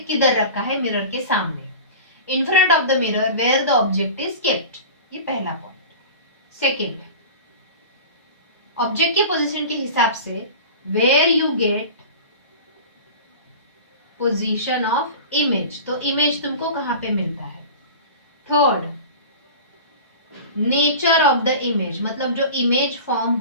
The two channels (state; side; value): inverted; both; correlation -0.35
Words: किधर रखा है? मिरर के सामने, in front of the mirror where the object is kept. ये पहला पॉइंट। सेकेंड, ऑब्जेक्ट के पोजीशन के हिसाब से where you get position of image, तो इमेज तुमको कहां पे मिलता है। Third, nature of the image, मतलब जो इमेज फॉर्म